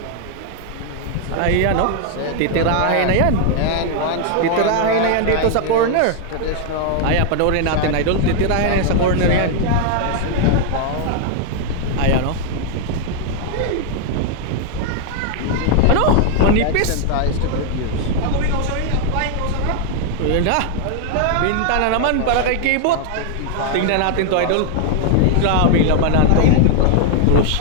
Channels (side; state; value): both; different; correlation 0.00